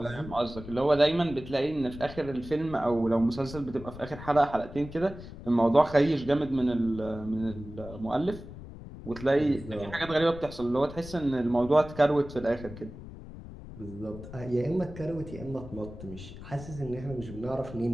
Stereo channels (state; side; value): noise; left; rumble, 13 dB below the sound